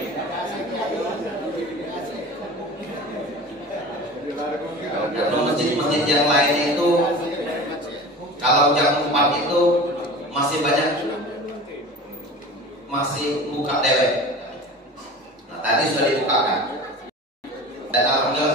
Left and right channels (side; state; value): both; normal; correlation 0.36